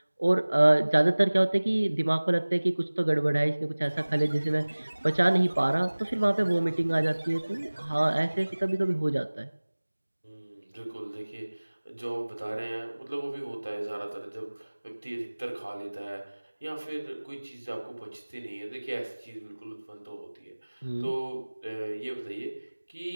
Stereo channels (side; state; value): both; inverted; correlation -1.00